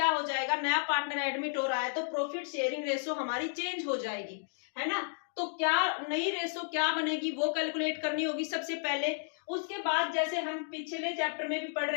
हो जाएगा, नया पार्टनर एडमिट हो रहा है तो प्रॉफिट शेयरिंग रेशो हमारी चेंज हो जाएगी, है ना। तो क्या नई रेशो क्या बनेगी वो कैलकुलेट करनी होगी सबसे पहले। उसके बाद जैसे हम पिछले चैप्टर में भी पढ़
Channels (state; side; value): silent; right; digital silence